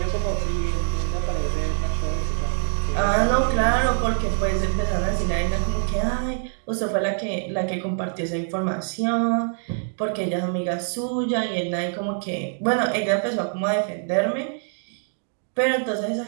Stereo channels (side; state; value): left; silent; digital silence